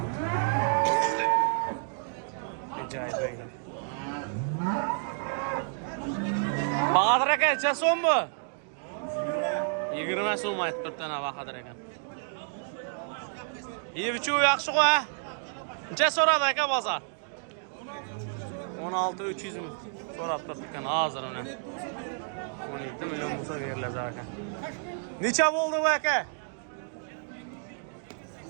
Acayip öyle. Bahadır aka, necha so'm bu? 20 so'm aytib turibdi ana Bahadır aka. Yevichu yaxshi qo'y. Necha so'radi aka bozor? 16-300 ming so'rab turibdi hozir uni. 17 million bo'lsa beriladi aka. Necha bo'ldi bu aka?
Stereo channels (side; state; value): left; silent; 58 dB below the other